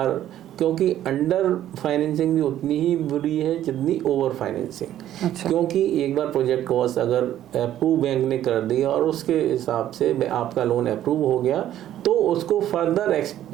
क्योंकि अंडर फाइनेंसिंग भी उतनी ही बुरी है जितनी ओवर फाइनेंसिंग। अच्छा। क्योंकि एक बार प्रोजेक्ट कॉस्ट अगर अप्रूव बैंक ने कर दी और उसके हिसाब से आपका लोन अप्रूव हो गया तो उसको फर्दर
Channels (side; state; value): left; quieter; 12.1 dB